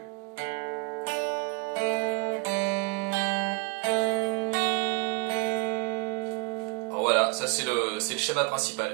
Alors voilà, ça c'est le schéma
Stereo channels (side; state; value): left; quieter; 32.4 dB